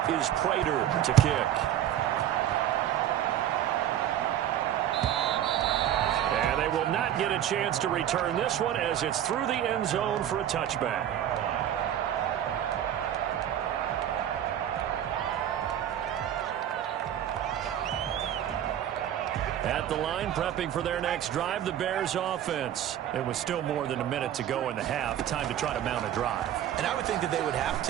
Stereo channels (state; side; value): quieter; left; 10.9 dB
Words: is Prater to kick. And they will not get a chance to return this one as it's through the end zone for a touchback. At the line, prepping for their next drive, the Bears offense. It was still more than a minute to go in the half. Time to try to mount a drive. And I would think that they would have